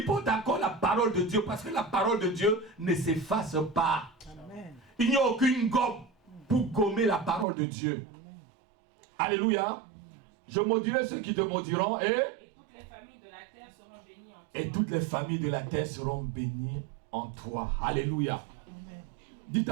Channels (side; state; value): left; drops out; at 7.5 s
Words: portent encore la parole de Dieu. Parce que la parole de Dieu ne s'efface pas. Amen. Il n'y a aucune gomme pour gommer la parole de Dieu. Amen. Alléluia. Je maudirai ceux qui te maudiront et toutes les familles de la terre seront bénies en toi. Et toutes les familles de la terre seront bénies en toi. Alléluia. Amen. Dites